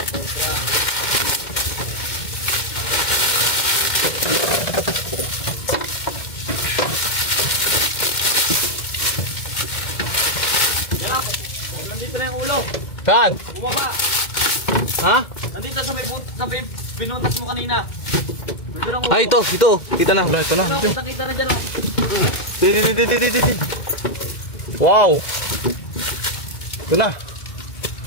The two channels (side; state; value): right; late; 2.1 ms